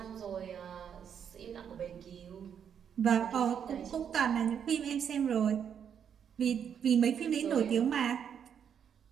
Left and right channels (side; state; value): left; quieter; 8.0 dB